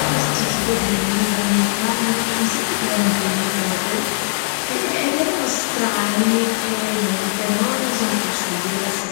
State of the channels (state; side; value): silent; right; digital silence